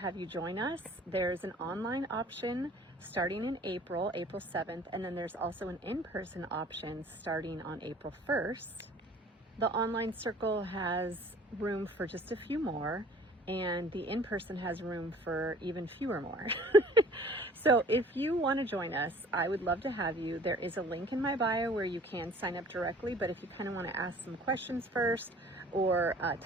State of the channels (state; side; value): normal; both; correlation 0.51